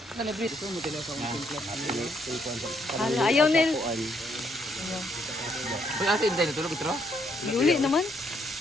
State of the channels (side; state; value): both; normal; correlation 0.72